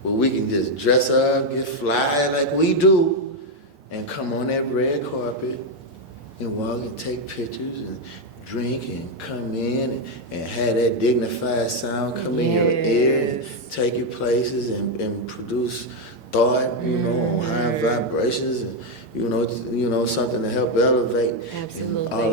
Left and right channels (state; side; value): late; right; 6.7 ms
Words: Where we can just dress up, get fly like we do, and come on that red carpet and walk and take pictures and drink and come in and have that dignified sound come in your ear and take you places and produce thought, you know, on high vibrations and, you know, something to help elevate. Absolutely. And